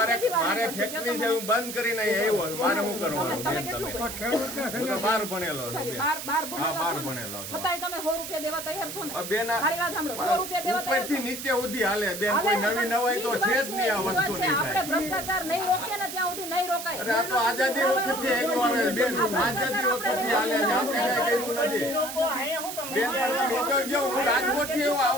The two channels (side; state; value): right; noise; hiss, 8 dB below the sound